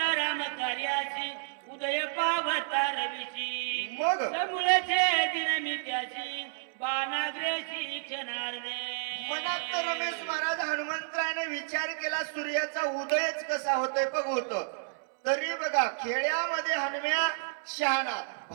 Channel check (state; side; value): silent; left; 57 dB below the other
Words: राम कार्याची उदय पावता रवीची मग मुळचे दिन मी त्याची बाणाग्रेशी क्षणार्धे. मनात तर रमेश महाराज हनुमंतरायने विचार केला सूर्याचा उदयच कसा होतोय बघतो. तरी बघा खेड्यामध्ये हनुम्या शहाणा.